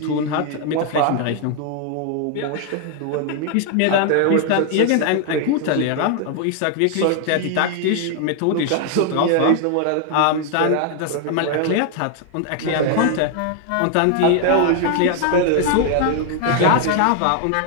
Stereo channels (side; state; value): both; different; correlation 0.00